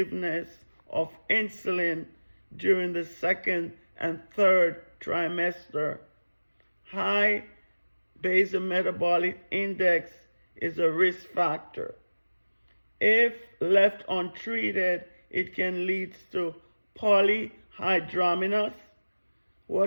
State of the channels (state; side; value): inverted; both; correlation -1.00